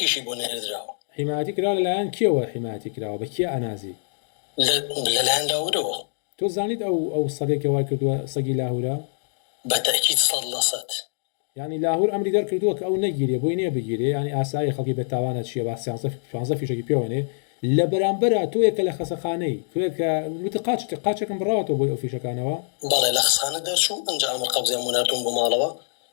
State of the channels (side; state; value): right; silent; digital silence